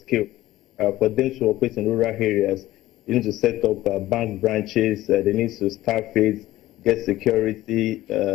for them to operate in rural areas. You need to set up bank branches, they need to staff it, get security,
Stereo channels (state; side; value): quieter; right; 15.8 dB